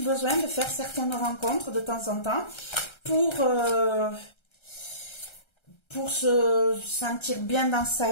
besoin de faire certaines rencontres de temps en temps pour se sentir bien dans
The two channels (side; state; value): right; late; 1.3 ms